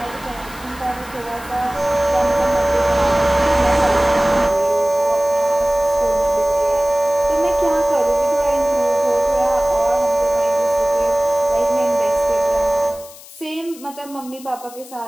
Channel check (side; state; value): left; noise; hiss, 19 dB below the sound